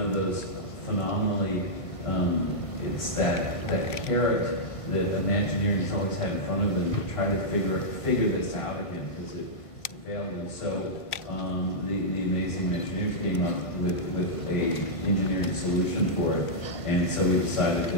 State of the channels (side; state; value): right; late; 1.5 ms